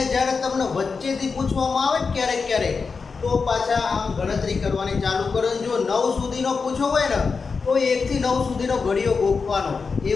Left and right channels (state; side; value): quieter; right; 4.9 dB